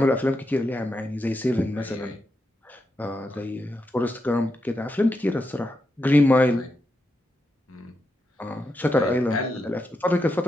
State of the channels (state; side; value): normal; both; correlation 0.85